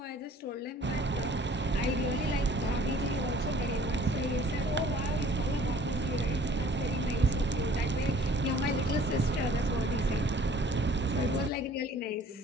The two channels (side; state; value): both; normal; correlation 0.53